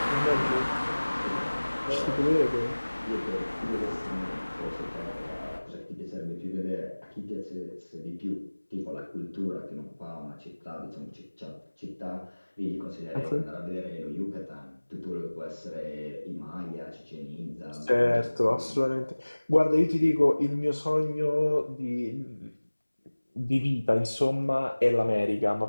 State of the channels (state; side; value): inverted; both; correlation -1.00